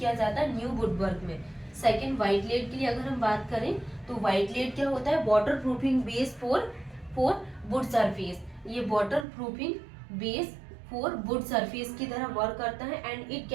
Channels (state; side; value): drops out; left; at 9.2 s